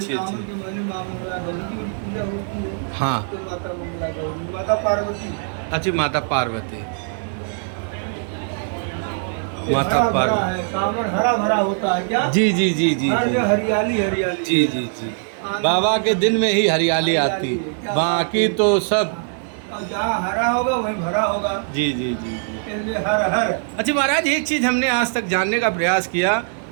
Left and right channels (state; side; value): silent; left; 63 dB below the other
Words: सावन अच्छी। के महीने माँ मंगला गौरी की पूजा होती है। हाँ। तो माता मंगला गौरी, माता पार्वती, अच्छी माता पार्वती। माता हरा भरा पार्वती। है, सावन हरा भरा होता है क्या? जी जी जी जी हर जी जगह हरियाली हरियाली। जी जी जी। बाबा के दिन में ही हरियाली आती, बाकी तो सब। और जहाँ हरा होगा वहीं भरा होगा। जी जी जी जी। इसलिए हर हर। अच्छा महाराज, एक चीज़ हमने आज तक जानने का प्रयास किया